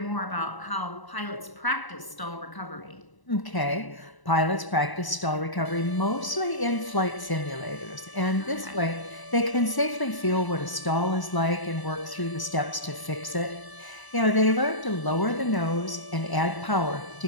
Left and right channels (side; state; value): right; late; 1.0 ms